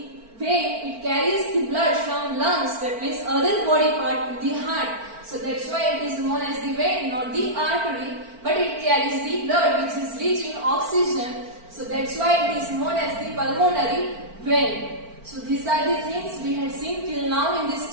vein, it carries the blood from lungs, that means other body part, to the heart. So that's why it is known as the vein, not the artery, but it carries the blood which is rich in oxygen. So that's why it is known as the pulmonary vein. So these are the things we had seen till now in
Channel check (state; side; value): late; left; 4.4 ms